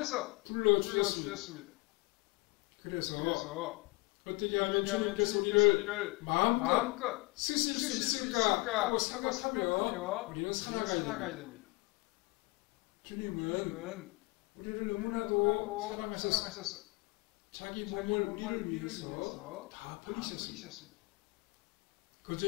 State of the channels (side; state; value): right; quieter; 26.3 dB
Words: 불러주셨습니다. 그래서 어떻게 하면 주님께서 우리를 마음껏 쓰실 수 있을까 하고 생각하며 우리는 살아가야 됩니다. 주님은 우리를 너무나도 그